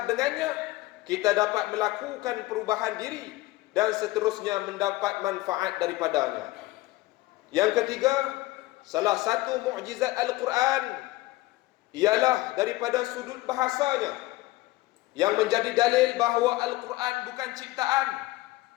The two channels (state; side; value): quieter; right; 18.9 dB